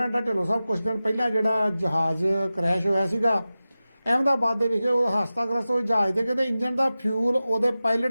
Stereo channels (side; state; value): both; inverted; correlation -0.95